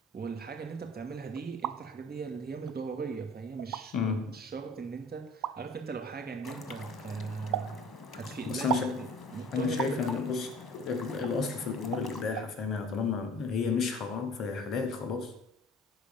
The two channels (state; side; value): normal; both; correlation 0.47